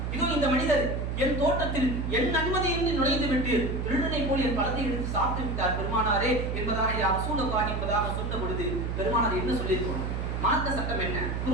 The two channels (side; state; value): right; noise; hum, 2 dB below the sound